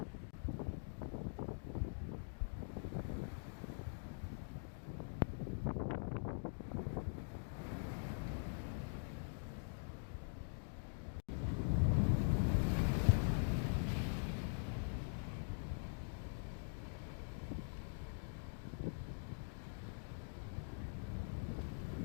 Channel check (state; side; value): silent; right; digital silence